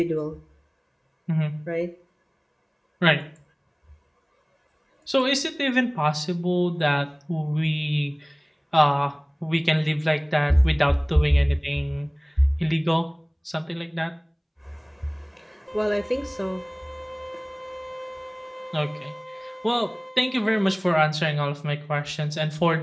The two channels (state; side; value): identical; both; correlation 1.00